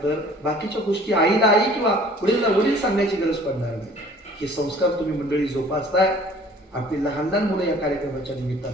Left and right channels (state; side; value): normal; both; correlation 0.51